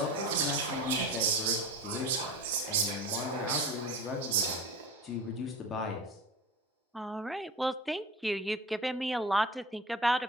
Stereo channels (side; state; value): both; normal; correlation 0.34